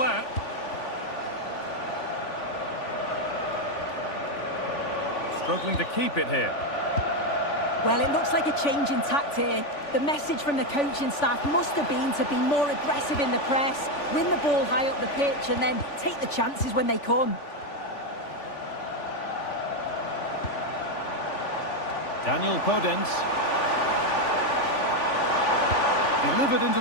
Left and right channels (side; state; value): right; late; 3.5 ms